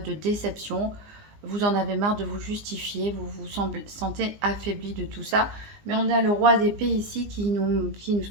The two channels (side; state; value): left; late; 20 ms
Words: de déception. Vous en avez marre de vous justifier, vous vous sentez affaibli de tout ça. Mais on a le roi d'épée ici qui nous